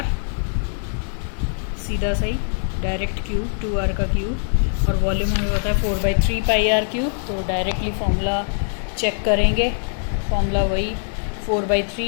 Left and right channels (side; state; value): right; silent; digital silence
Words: सीधा सही डायरेक्ट क्यूब 2R का क्यूब, और वॉल्यूम हमें पता है 4/3 पाई R क्यूब। तो डायरेक्टली फॉर्मूला चेक करेंगे, फॉर्मूला वही